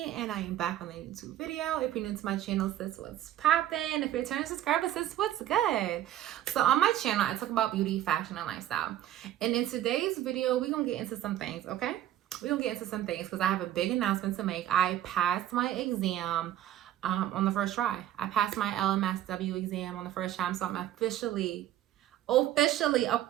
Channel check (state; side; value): quieter; left; 12.4 dB